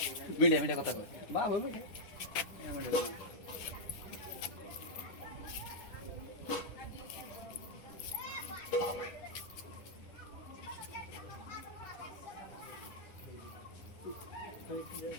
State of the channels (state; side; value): late; right; 10 ms